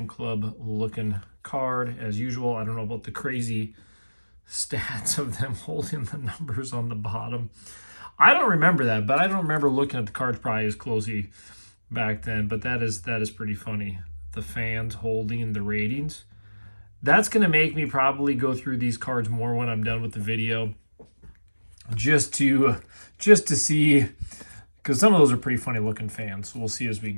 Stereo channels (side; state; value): both; inverted; correlation -1.00